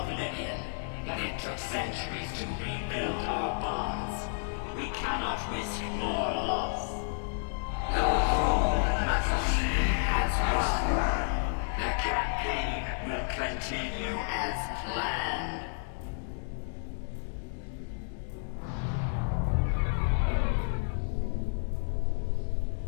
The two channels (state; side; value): silent; right; digital silence